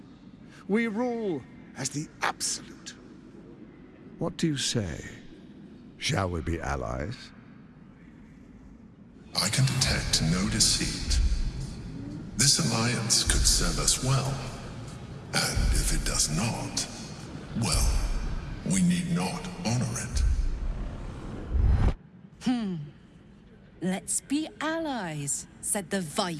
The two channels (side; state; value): both; identical; correlation 1.00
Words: We rule as the Absolute. What do you say? Shall we be allies? I can detect no deceit. This alliance could serve us well. And if it does not, well, we need not honor it. Let's be allies, said the